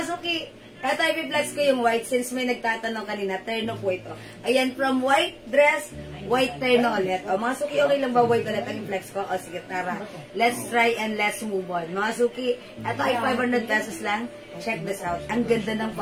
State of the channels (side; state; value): both; identical; correlation 1.00